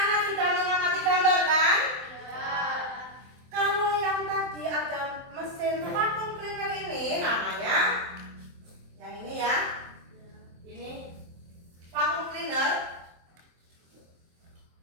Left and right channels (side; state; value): left; late; 23 ms